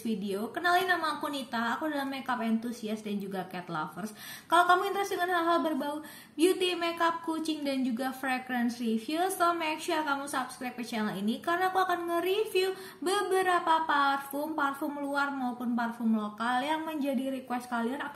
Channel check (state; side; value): identical; both; correlation 1.00